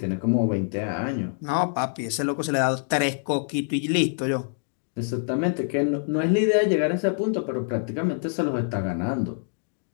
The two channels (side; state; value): right; silent; digital silence